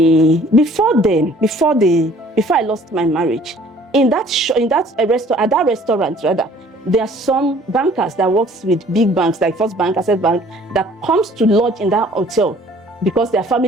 Before I lost my marriage, at that restaurant, there are some bankers that works with big banks like First Bank, Access Bank, that comes to lodge in that hotel because their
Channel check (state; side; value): normal; both; correlation 0.55